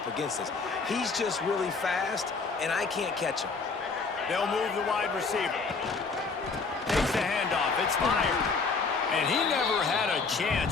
against this. He's just really fast, and I can't catch him. They'll move the wide receiver. Takes the handoff. It's fired. And he never had a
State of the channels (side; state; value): right; quieter; 4.5 dB